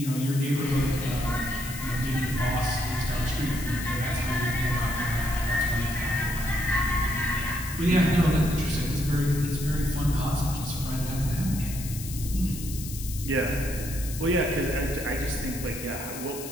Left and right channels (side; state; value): left; noise; hiss, 10 dB below the sound